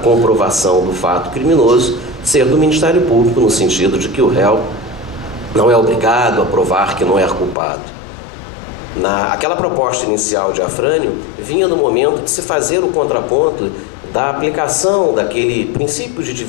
comprovação do fato criminoso ser do Ministério Público, no sentido de que o réu não é obrigado a provar que não é culpado. Aquela proposta inicial de Afrânio vinha no momento de se fazer o contraponto da aplicação daquele princípio de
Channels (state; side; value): drops out; right; at 7.6 s